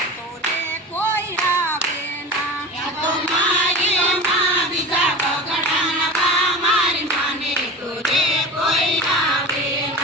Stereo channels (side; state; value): both; normal; correlation 0.32